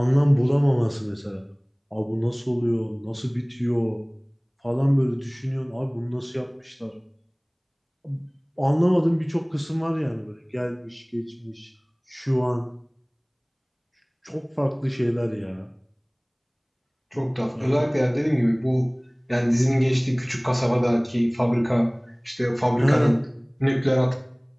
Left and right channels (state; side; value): identical; both; correlation 1.00